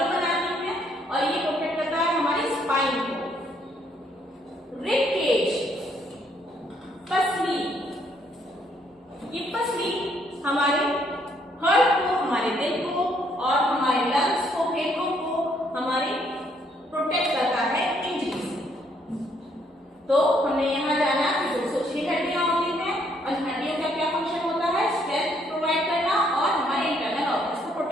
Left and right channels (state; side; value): normal; both; correlation 0.69